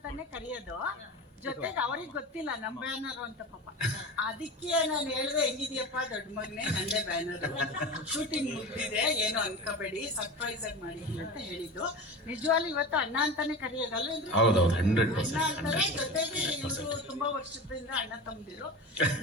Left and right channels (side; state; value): both; normal; correlation 0.30